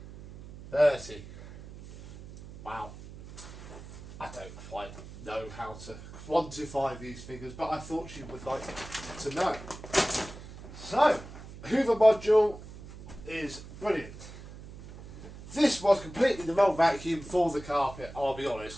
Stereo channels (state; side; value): noise; right; hum, 15 dB below the sound